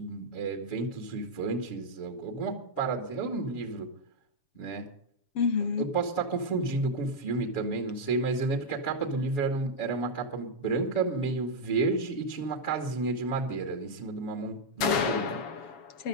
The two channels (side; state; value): right; late; 7.1 ms